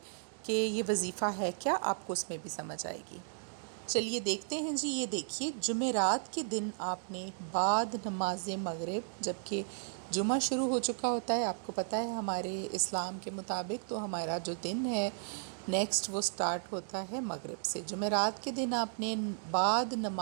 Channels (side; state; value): left; silent; digital silence